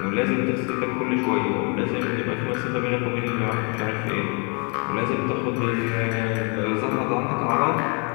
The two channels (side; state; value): right; quieter; 34.7 dB